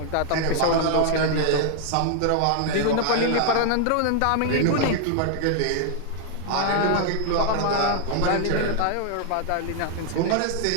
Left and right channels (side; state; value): both; different; correlation 0.00